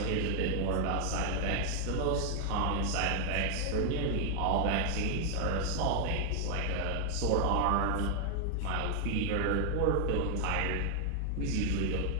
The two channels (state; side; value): different; both; correlation 0.00